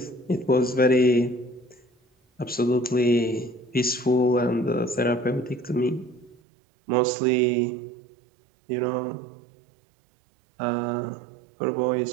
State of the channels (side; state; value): left; drops out; at 6.4 s